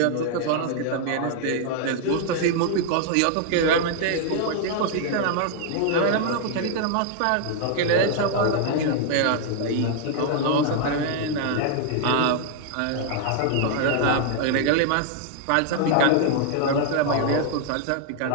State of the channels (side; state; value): both; different; correlation 0.00